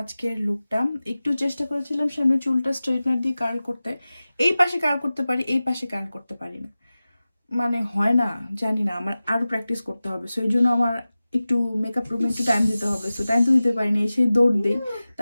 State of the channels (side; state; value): both; inverted; correlation -0.96